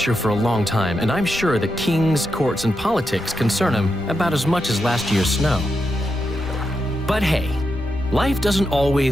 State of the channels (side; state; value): left; noise; rumble, 17 dB below the sound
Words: for a long time, and I'm sure that kings, courts, and politics concern him about as much as last year's snow. But hey, life doesn't